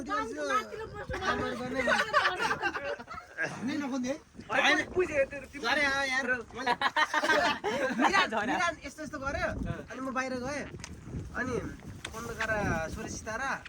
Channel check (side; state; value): both; identical; correlation 1.00